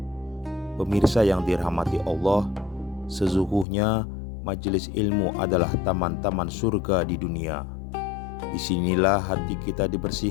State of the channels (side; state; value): right; drops out; at 3.7 s